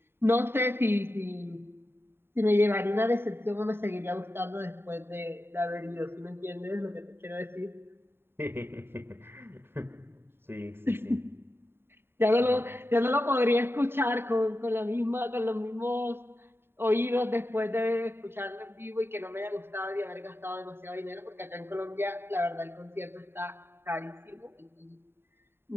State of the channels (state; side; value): late; left; 0.11 ms